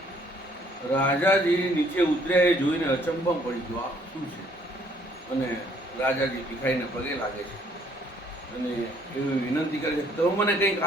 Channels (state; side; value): normal; both; correlation 0.63